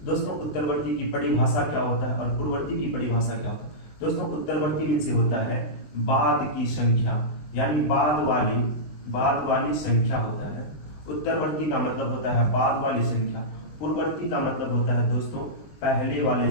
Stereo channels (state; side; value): late; right; 20 ms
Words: दोस्तों उत्तरवर्ती की परिभाषा क्या होता है और पूर्ववर्ती की परिभाषा क्या होता है। दोस्तों, उत्तरवर्ती में से होता है बाद की संख्या, यानी बाद वाली संख्या होता है। उत्तरवर्ती का मतलब होता है बाद वाली संख्या। पूर्ववर्ती का मतलब होता है दोस्तों पहले वाले